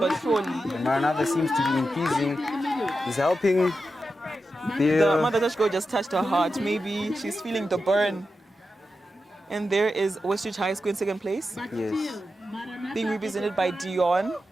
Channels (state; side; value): normal; both; correlation 0.90